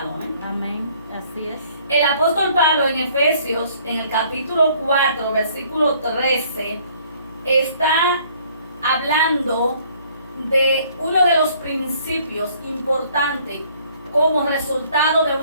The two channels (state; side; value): inverted; both; correlation -0.60